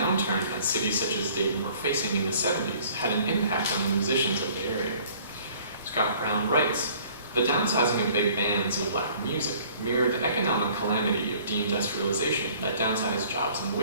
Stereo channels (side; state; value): both; inverted; correlation -0.54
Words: that cities such as Dayton were facing in the 70s had an impact on the musicians of the area. Scott Brown writes, "The downsizing of big bands and black music mirrored the economic calamity of deindustrialization that downsized jobs and